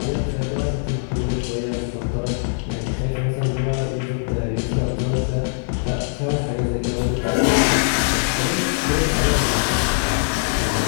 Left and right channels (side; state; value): right; silent; digital silence